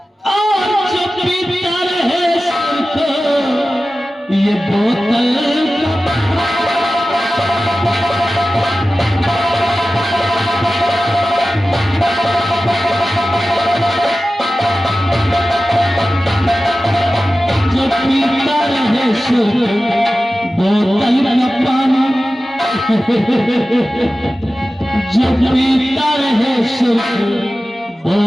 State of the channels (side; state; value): both; normal; correlation 0.95